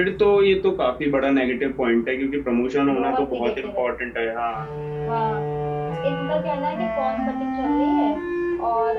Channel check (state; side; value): identical; both; correlation 1.00